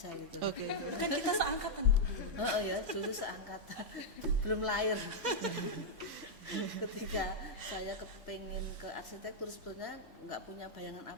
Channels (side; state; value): both; normal; correlation -0.04